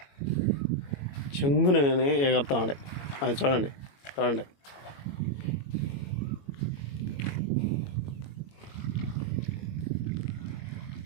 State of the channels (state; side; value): late; right; 21 ms